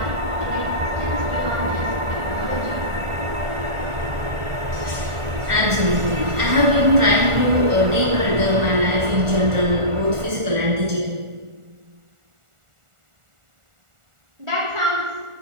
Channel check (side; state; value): left; late; 1.4 ms